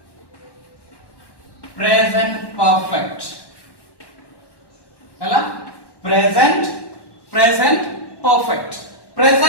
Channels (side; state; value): right; late; 1.1 ms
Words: प्रेजेंट परफेक्ट हैला प्रेजेंट